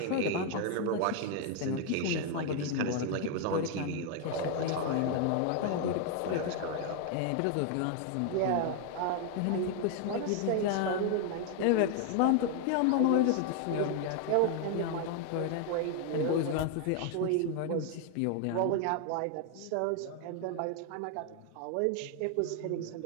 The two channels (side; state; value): both; different; correlation 0.00